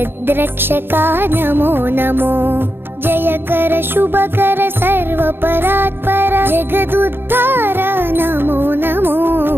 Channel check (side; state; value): left; late; 0.10 ms